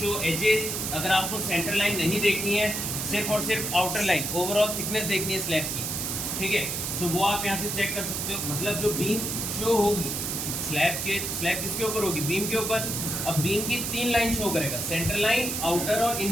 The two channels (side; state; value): right; noise; hiss, 2 dB below the sound